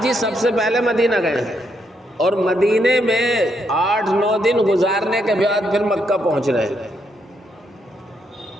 سب سے پہلے مدینہ گئے ہیں اور مدینے میں 8-9 دن گزارنے کے بعد پھر مکہ پہنچ رہے ہیں۔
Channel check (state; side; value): normal; both; correlation 0.77